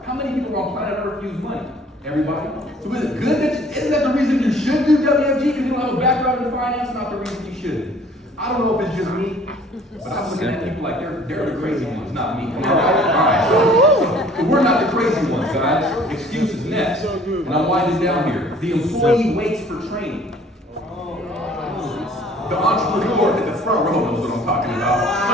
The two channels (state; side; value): normal; both; correlation 0.54